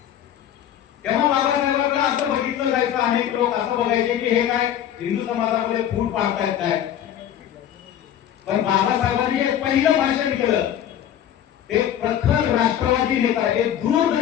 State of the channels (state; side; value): quieter; right; 10.4 dB